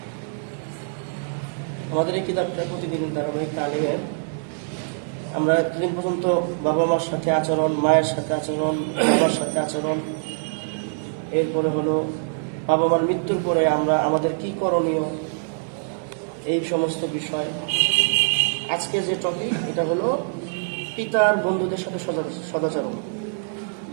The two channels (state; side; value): silent; left; digital silence